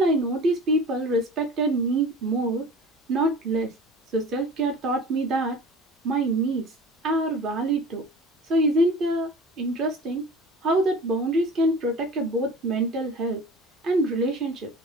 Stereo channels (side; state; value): both; normal; correlation 0.39